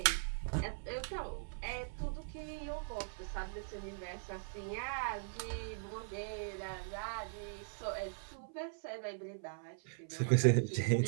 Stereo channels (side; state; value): left; silent; 51 dB below the other